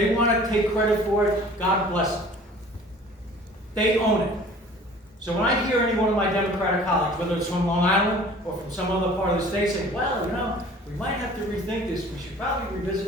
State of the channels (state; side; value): normal; both; correlation 0.48